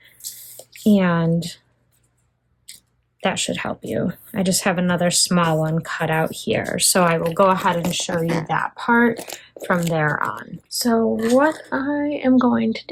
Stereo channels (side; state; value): both; identical; correlation 1.00